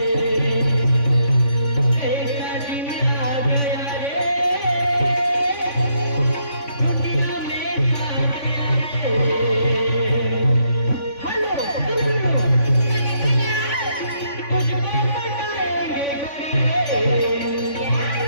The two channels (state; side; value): late; right; 3.5 ms